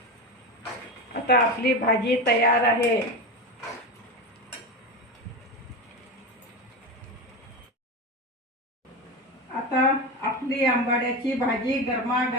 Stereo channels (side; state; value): both; normal; correlation 0.21